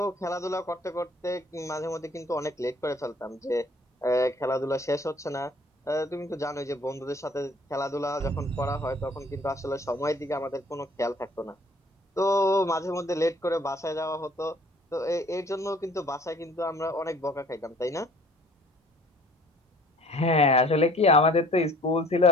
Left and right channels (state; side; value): normal; both; correlation 0.55